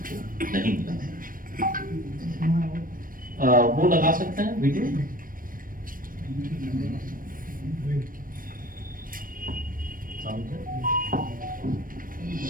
नहीं मिला। वो लगा सकते हैं वीडियो।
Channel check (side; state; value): left; late; 0.40 ms